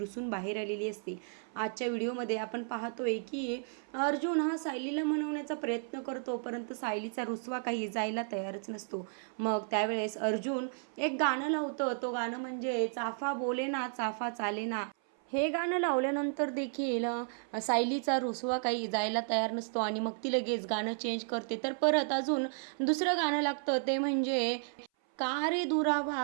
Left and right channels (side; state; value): left; silent; 56 dB below the other